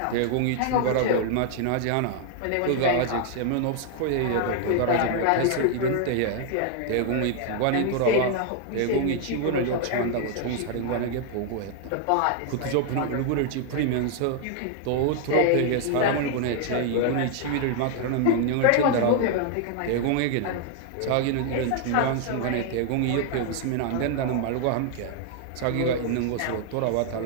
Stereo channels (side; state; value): both; different; correlation 0.00